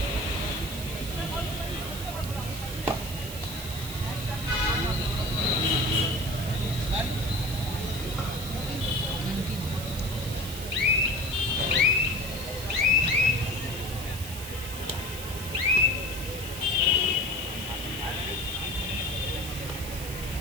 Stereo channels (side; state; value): right; noise; hiss, 10 dB below the sound